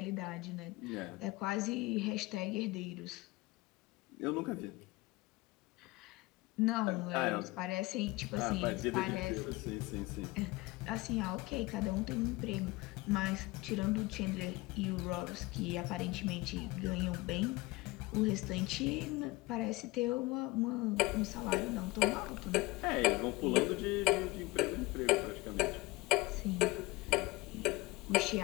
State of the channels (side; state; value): right; quieter; 21.6 dB